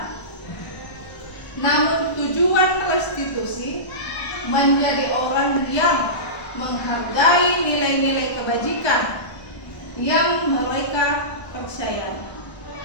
Namun tujuan restitusi menjadi orang yang menghargai nilai-nilai kebajikan yang mereka percayai.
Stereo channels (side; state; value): right; late; 1.2 ms